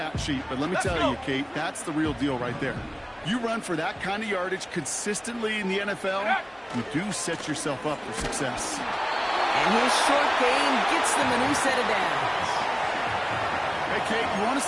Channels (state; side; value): identical; both; correlation 1.00